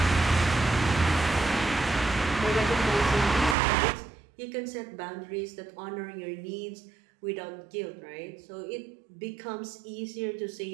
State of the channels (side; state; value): left; drops out; at 3.6 s